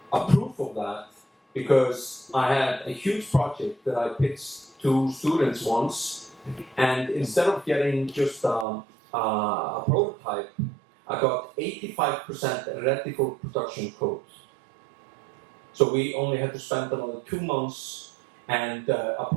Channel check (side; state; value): left; drops out; at 8.7 s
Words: a proof of that because I had a huge project that I pitched to students once, and instead of getting just a prototype, I got 85% ready for production code. So we only had to spend another 2 months, and a